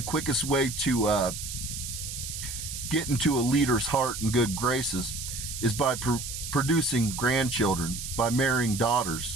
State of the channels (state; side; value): noise; right; hiss, 7 dB below the sound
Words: quickest way to get into a leader's heart and good graces is by producing grandchildren, by marrying